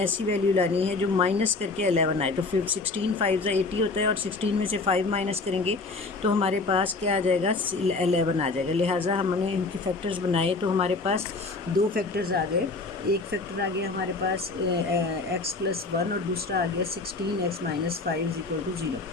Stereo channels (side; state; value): right; quieter; 3.7 dB